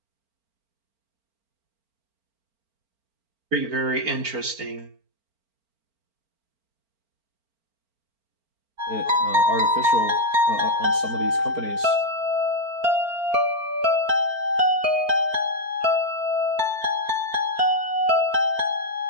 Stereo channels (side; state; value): left; late; 4.4 ms